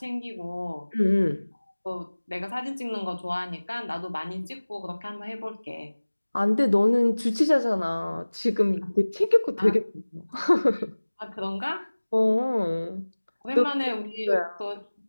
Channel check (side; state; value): both; inverted; correlation -1.00